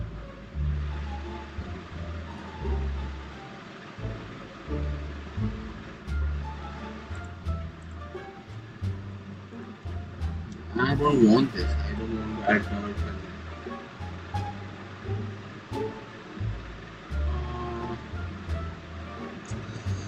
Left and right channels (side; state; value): both; identical; correlation 1.00